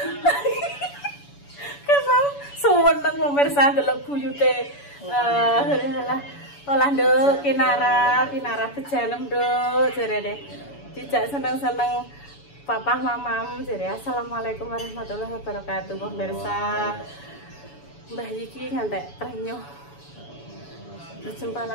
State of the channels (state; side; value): late; right; 7.0 ms